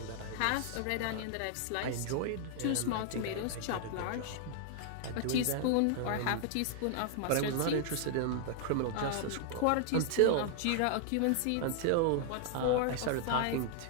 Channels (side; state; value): both; different; correlation 0.00